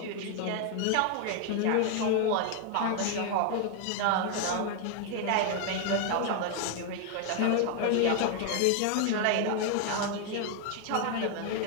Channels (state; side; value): different; both; correlation 0.00